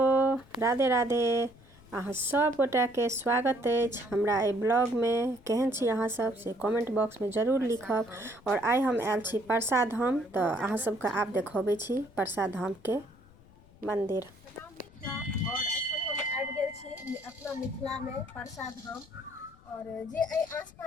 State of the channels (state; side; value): noise; left; rumble, 25 dB below the sound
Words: Radhe Radhe. अहाँ सब गोटा के स्वागत अछि हमरा ए ब्लॉग में। केहन छी अहाँ सब से कमेंट बॉक्स में जरूर लिखब। और आइ हम आयल छी परसा धाम, तो अहाँ सबके आब देखबै छी परसा धाम के मंदिर। और एखन हम आबि गेल छी अपना मिथिला में परसा धाम। और जे